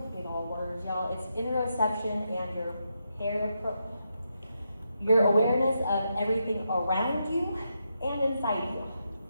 big old words, y'all. It's interoception and your awareness of everything around you and inside you.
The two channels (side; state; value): both; inverted; correlation -0.84